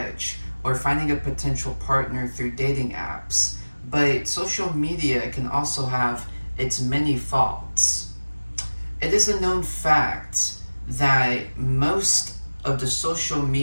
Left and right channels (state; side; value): inverted; both; correlation -1.00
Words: or finding a potential partner through dating apps. But social media can also have its many faults. It is a known fact that most of the social